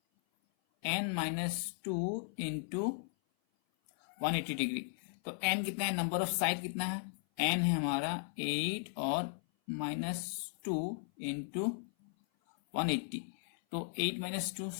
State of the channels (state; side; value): silent; right; 53 dB below the other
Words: into 180 degree. तो n कितना है, नंबर ऑफ साइड कितना है, n है हमारा 8 और -2 इंटू 180। तो 8 - 2